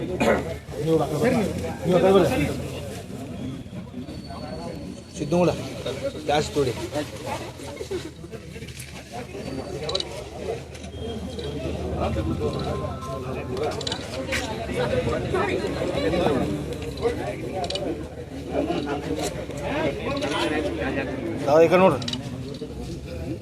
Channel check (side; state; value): both; identical; correlation 1.00